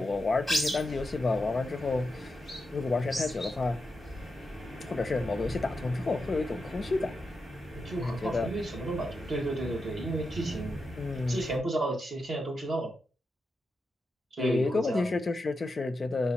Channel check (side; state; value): both; normal; correlation 0.87